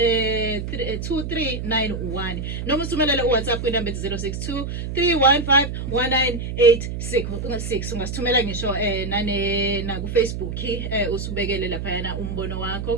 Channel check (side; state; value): right; noise; hum, 5 dB below the sound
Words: noma usumelele uWhatsApp kwinamba 0623151986 ungasithumela ngisho na ku Facebook usubekele lapha yana umbono